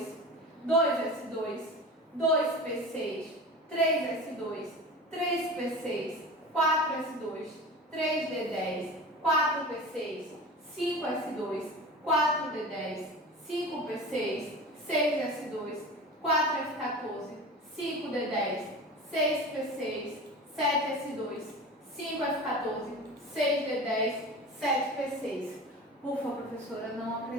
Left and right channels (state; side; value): normal; both; correlation 0.34